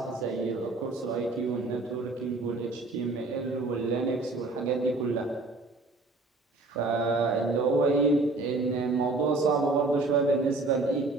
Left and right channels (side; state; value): left; quieter; 3.3 dB